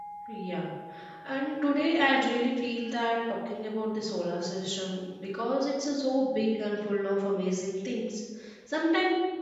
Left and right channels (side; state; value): both; identical; correlation 1.00